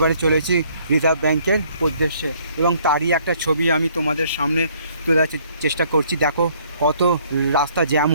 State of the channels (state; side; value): inverted; both; correlation -0.62